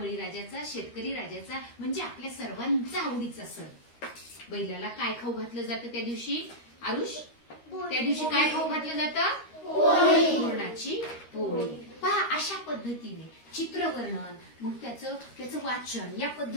शेतकरी राजाचा म्हणजे आपल्या सर्वांचा आवडीचा सण. बैलाला काय खाऊ घातलं जातं त्या दिवशी? आरुष, त्या दिवशी काय खाऊ घातलं जातं? पुरणाची पोळी. पहा अशा पद्धतीने चित्रवर्णन मग त्याचं वाचन या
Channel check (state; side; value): late; right; 13 ms